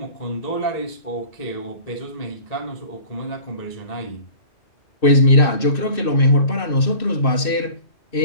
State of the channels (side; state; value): right; late; 2.6 ms